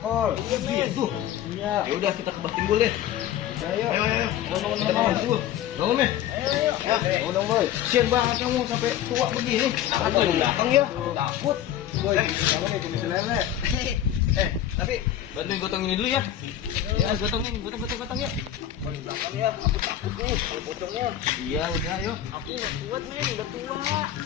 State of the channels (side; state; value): right; quieter; 11.2 dB